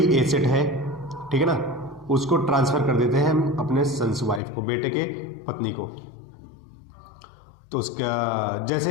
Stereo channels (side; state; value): right; drops out; at 4.4 s